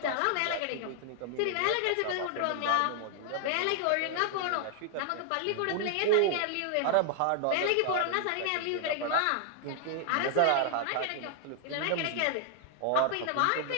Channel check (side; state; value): both; different; correlation 0.00